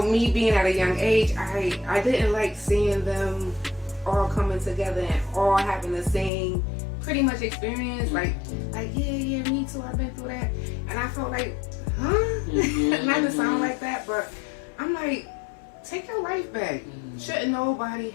being at a young age, I didn't like seeing them all coming together and all having the same pretty much experience. Like yeah, me too, I've been through that. And I felt like, not to sound like that, but I'm like, take your life back. Shouldn't nobody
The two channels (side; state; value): right; drops out; at 6.3 s